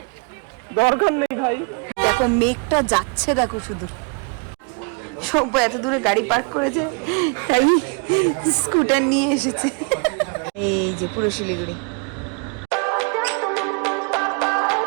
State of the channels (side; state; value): left; quieter; 34.8 dB